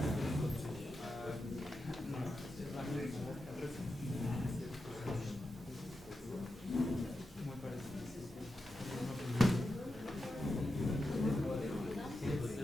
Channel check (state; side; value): normal; both; correlation 0.89